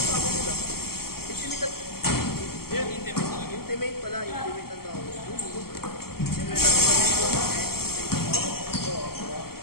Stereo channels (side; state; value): right; late; 0.94 ms